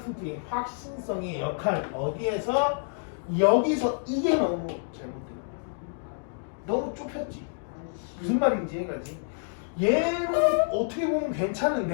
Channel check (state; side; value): silent; right; digital silence